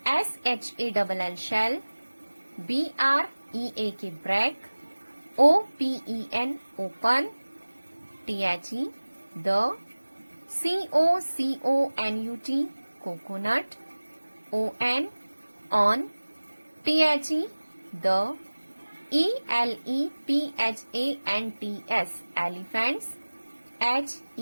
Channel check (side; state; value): both; inverted; correlation -1.00